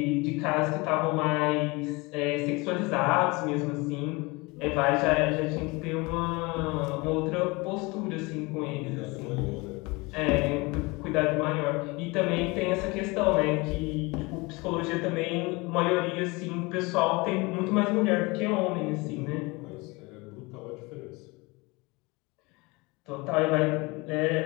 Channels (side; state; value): right; quieter; 25.2 dB